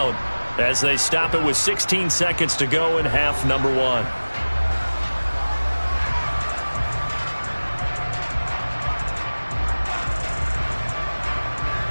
as they stop it with 16 seconds to go in half number one.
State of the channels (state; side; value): inverted; both; correlation -1.00